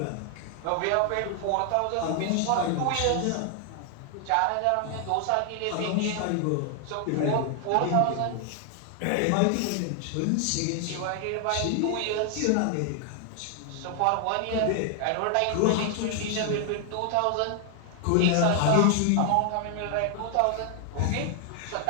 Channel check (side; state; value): both; different; correlation 0.00